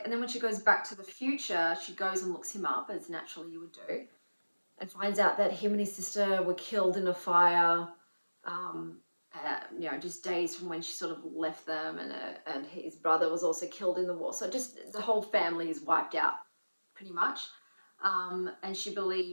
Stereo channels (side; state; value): both; inverted; correlation -1.00